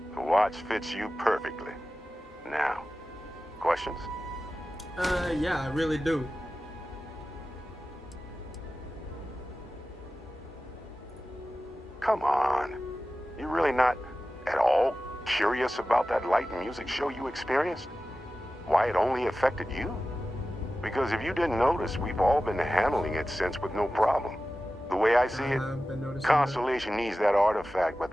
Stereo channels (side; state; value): both; normal; correlation 0.95